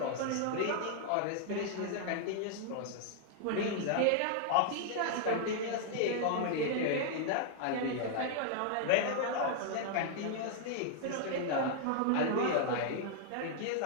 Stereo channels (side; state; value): both; different; correlation -0.01